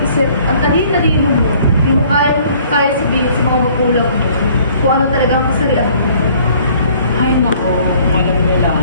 Ang talino mo. Hindi mo kaya sabihin sa mga magulang mo kung ano talaga ang kasarian mo. Ay nako, ngayon nila.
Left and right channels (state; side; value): inverted; both; correlation -0.57